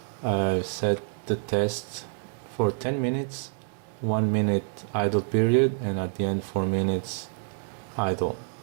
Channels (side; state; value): left; silent; 60 dB below the other